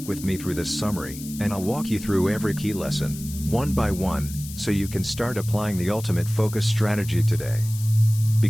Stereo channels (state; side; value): noise; left; hiss, 14 dB below the sound